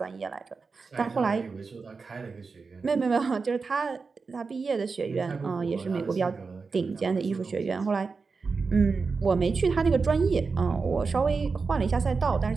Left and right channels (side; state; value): left; quieter; 4.6 dB